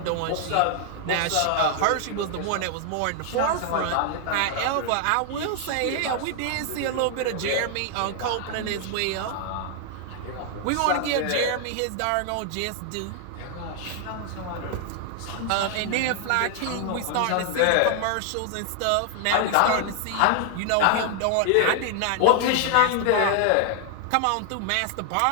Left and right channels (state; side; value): different; both; correlation 0.00